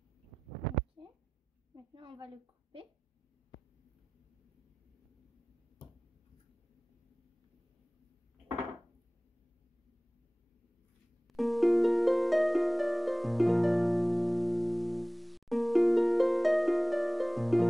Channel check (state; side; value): normal; both; correlation 0.98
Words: Ok. Maintenant, on va le couper.